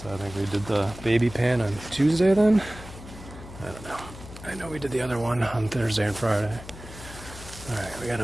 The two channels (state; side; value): noise; left; hum, 15 dB below the sound